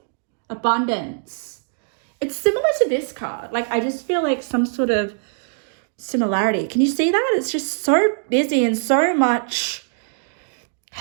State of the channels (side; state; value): left; silent; digital silence